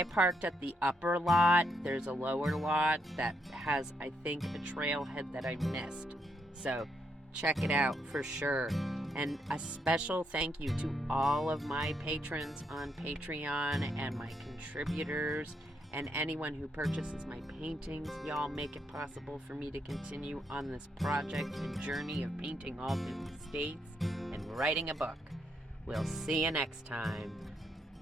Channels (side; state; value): both; normal; correlation 0.78